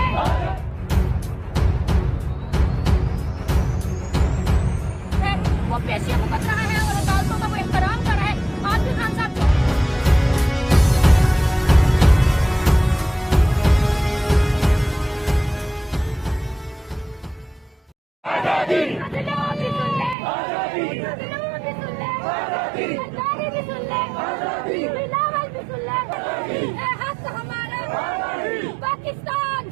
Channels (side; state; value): left; drops out; at 20.2 s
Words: पेशियां भुगत रहा है और अदालतों का वो एहतराम कर रहा है। आज भी खान साहब पाकिस्तान